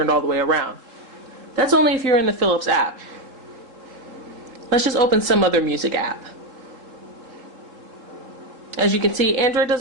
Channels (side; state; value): left; late; 3.7 ms